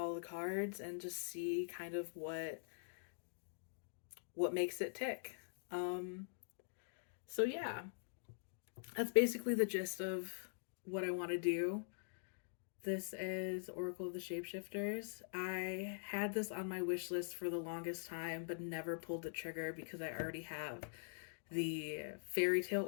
the cards and just see kind of what makes it tick. Um, so yeah, that's basically the gist of what I want to do. This is Oracle of the Shapeshifters. I had this on my wish list for the longest time, but never pulled the trigger because I already have the Fairy Tale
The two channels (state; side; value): silent; right; digital silence